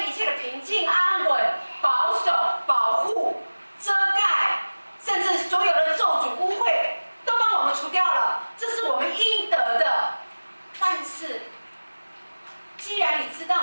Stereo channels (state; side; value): inverted; both; correlation -1.00